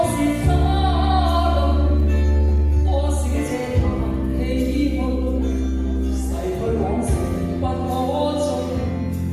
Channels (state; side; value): identical; both; correlation 1.00